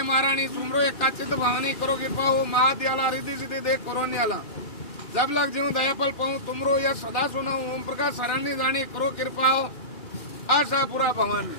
महारानी, सुमरो एक काचित भवानी, करो कृपा हो महादयाला, रिद्धि सिद्धि देख करोनियाला, जब लग जीव दयापल पाऊं, तुमरो यह सदा सुनाऊं, ओम प्रकाश शरणी जानी, करो कृपा हो आशापुरा भवानी।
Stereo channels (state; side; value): late; right; 2.4 ms